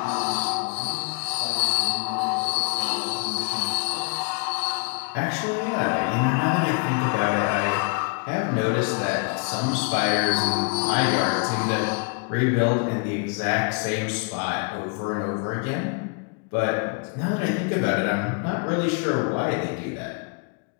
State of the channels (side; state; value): right; quieter; 35.6 dB